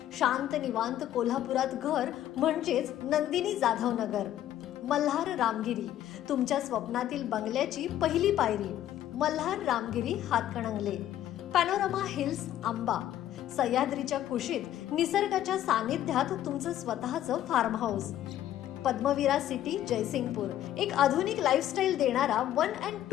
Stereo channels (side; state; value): right; quieter; 12.2 dB